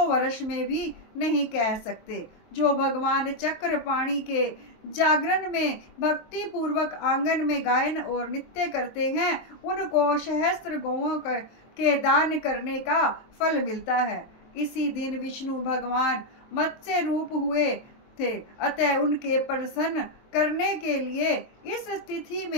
वर्ष में भी नहीं कह सकते। जो भगवान चक्रपाणि के जागरण में भक्ति पूर्वक आंगन में गायन और नृत्य करते हैं, उनको सहस्त्र गौओं के दान करने का फल मिलता है। इसी दिन विष्णु भगवान मत्स्य रूप हुए थे, अतः उनके प्रसन्न करने के लिए इस तिथि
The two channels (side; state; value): right; late; 23 ms